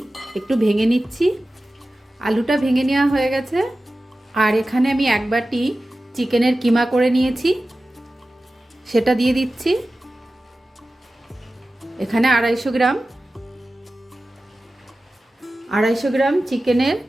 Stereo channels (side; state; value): both; normal; correlation 0.95